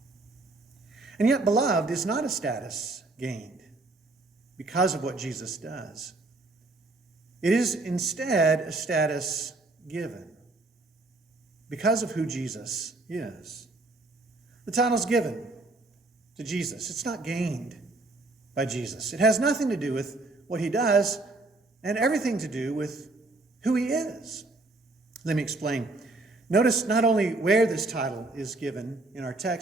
And yet, beloved is not a status gained because of what Jesus does. It is instead a status given because of who Jesus is. The title's given to Jesus. It's not gained by Jesus. It has nothing to do with what he does and everything to do with who he is. Let me explain. Notice not only where this title is given in our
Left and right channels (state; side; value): quieter; left; 3.0 dB